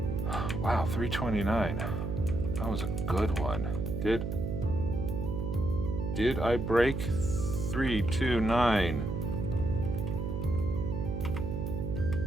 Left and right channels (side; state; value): right; noise; hum, 3 dB below the sound